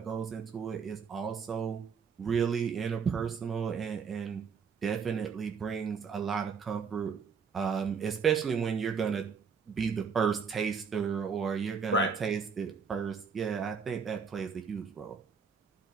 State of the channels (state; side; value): quieter; left; 6.0 dB